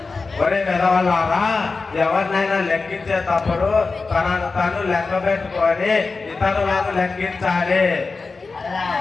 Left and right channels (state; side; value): quieter; right; 4.1 dB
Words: ఒరే వెదవల్లారా, ఎవరినైనా లెక్కించేటప్పుడు తనను తను లెక్క పెట్టుకొని ఇతరులను లెక్కించాలి.